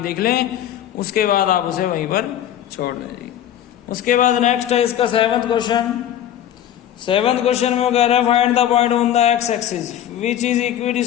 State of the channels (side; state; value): right; quieter; 11.1 dB